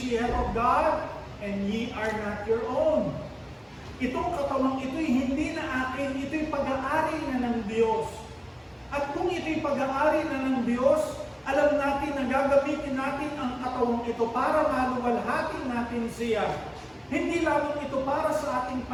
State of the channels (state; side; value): identical; both; correlation 1.00